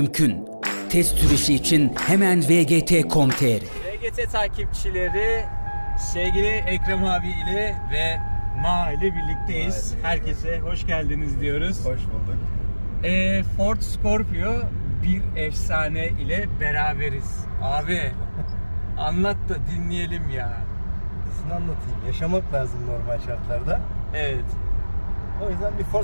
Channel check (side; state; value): both; inverted; correlation -1.00